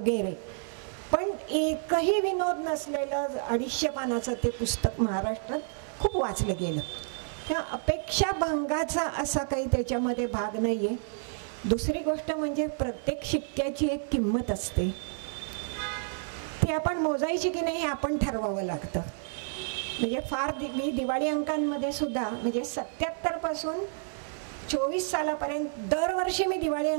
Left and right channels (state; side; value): silent; left; 58 dB below the other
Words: पण एकही विनोद नसलेलं 250 पानाचं ते पुस्तक महाराष्ट्रात खूप वाचलं गेलं. त्या अपेक्षाभंगाचा असा काही त्याच्यामध्ये भाग नाहीये. दुसरी गोष्ट म्हणजे प्रत्येक शिक्क्याची एक किंमत असते, ती आपण मोजायची की नाही हे आपण ठरवावं लागतं. म्हणजे फार मी दिवाळी अंकांमध्ये सुद्धा म्हणजे 77 पासून 24 सालापर्यंत दरवर्षी मी दिवाळी